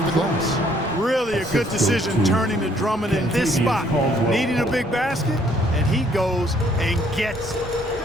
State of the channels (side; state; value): both; normal; correlation 0.64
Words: the glass. Really a good decision turning to Drummond in this spot. Needing a big basket, and he goes and gets it.